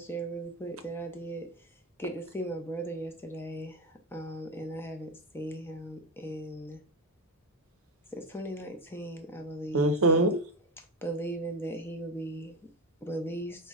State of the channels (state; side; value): normal; both; correlation 0.18